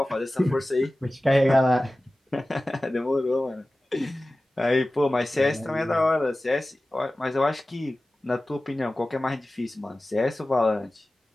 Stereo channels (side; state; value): both; normal; correlation 0.96